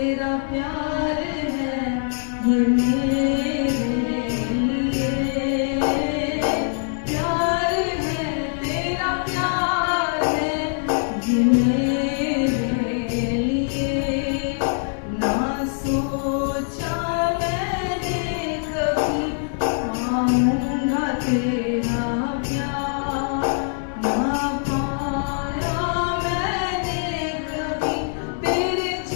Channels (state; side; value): silent; right; 63 dB below the other